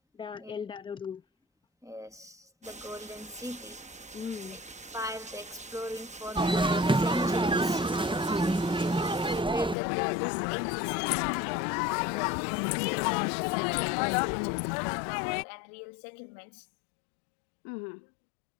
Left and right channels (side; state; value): right; drops out; at 9.8 s